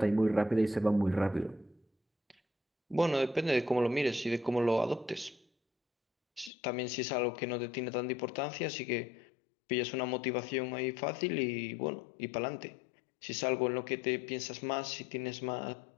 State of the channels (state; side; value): drops out; right; at 6.5 s